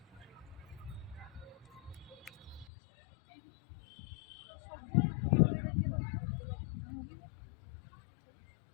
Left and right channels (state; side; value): drops out; right; at 2.7 s